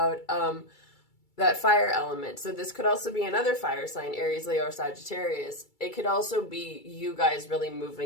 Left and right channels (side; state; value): right; late; 2.3 ms